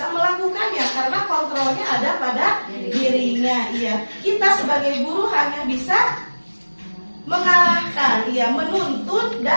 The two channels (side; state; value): both; inverted; correlation -1.00